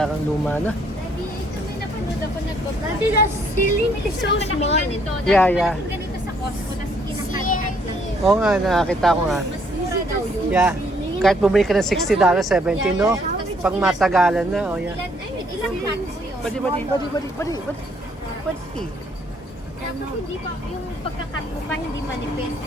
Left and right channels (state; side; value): normal; both; correlation 0.66